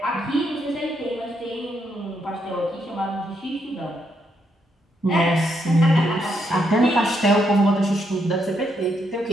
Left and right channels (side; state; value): both; normal; correlation 0.77